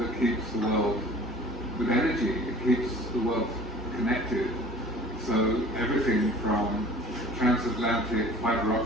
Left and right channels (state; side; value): normal; both; correlation 0.47